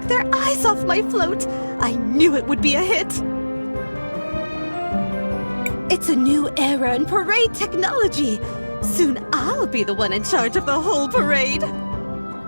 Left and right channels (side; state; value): both; inverted; correlation -1.00